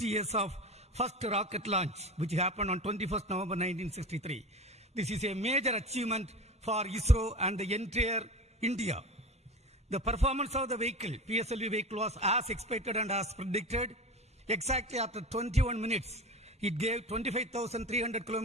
years of first rocket launch, which happened on 21st November 1963. This is a major achievement for ISRO and the entire India. The performance of the vehicle, PSLV vehicle, was as expected and as predicted. Exactly after 21 minutes, it gave 25,300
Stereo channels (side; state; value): both; normal; correlation 0.30